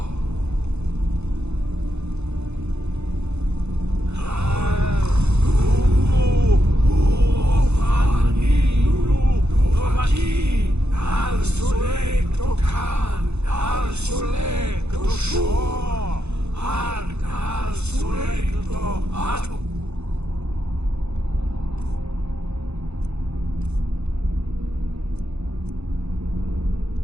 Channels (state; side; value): late; left; 0.81 ms